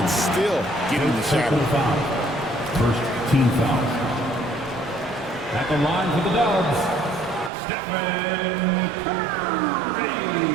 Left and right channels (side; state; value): left; drops out; at 7.5 s